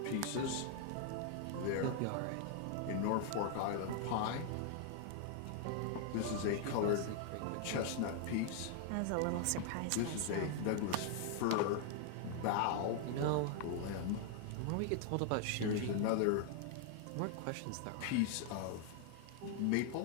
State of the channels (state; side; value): different; both; correlation 0.00